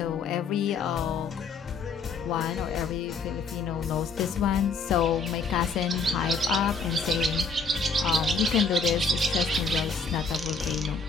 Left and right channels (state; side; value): quieter; right; 4.4 dB